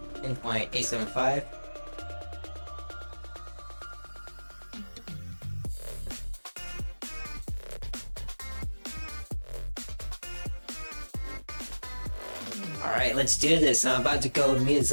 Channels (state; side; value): inverted; both; correlation -1.00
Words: In 0.875. Alright, let's do this. I'm about to go